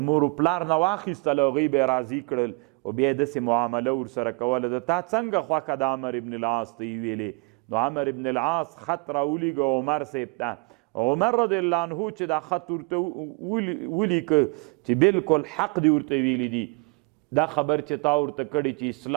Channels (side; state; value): left; quieter; 30.5 dB